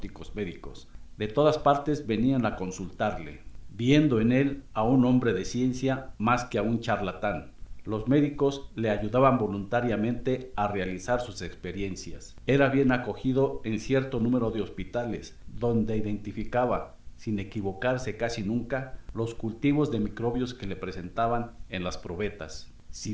médicos. De todas partes venían a consultarle, viendo en él a un hombre de ciencia más que a un charlatán. Los médicos le ayudaban voluntariamente a realizar sus experiencias. Era bien acogido en cierto número de hospitales, donde identificaba, sin equivocarse casi nunca, los cultivos de microbios que le presentaban en las probetas. Si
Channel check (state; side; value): identical; both; correlation 1.00